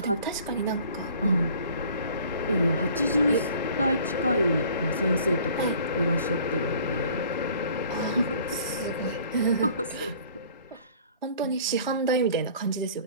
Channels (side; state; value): both; inverted; correlation -0.51